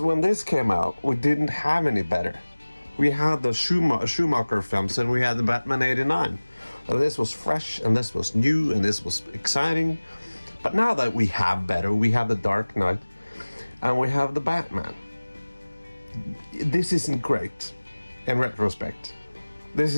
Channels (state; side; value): inverted; both; correlation -1.00